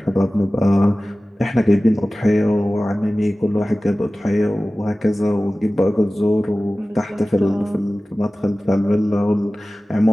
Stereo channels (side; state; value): both; normal; correlation 0.97